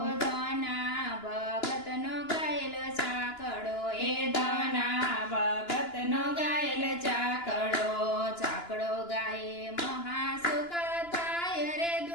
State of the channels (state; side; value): late; right; 2.9 ms